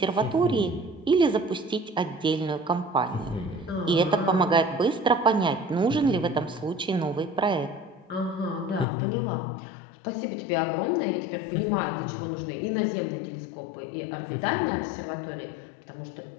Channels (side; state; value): right; drops out; at 8.8 s